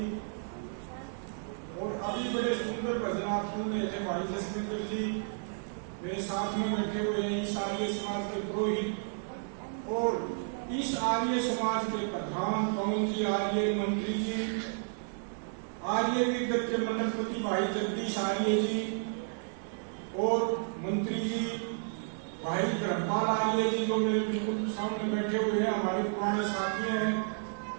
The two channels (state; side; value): silent; left; digital silence